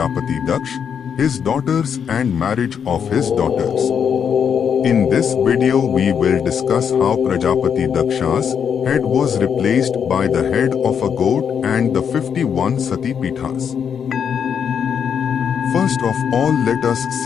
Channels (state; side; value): quieter; right; 7.5 dB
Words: Daksh, his daughters and marriage of his daughters. In this video, we will discuss how Prajapati Daksha's head was replaced by the head of a goat and the 51 Sati Peethas. First of all, let us